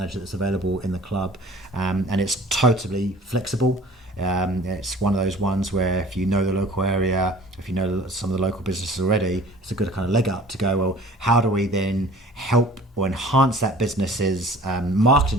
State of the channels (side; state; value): both; normal; correlation 0.47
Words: that's available in the club. And it's totally flexible. It's one of those ones where if you know the local area, if you know some of the local businesses already, it's a good kind of leg up to go, well, how do we then help or enhance that business's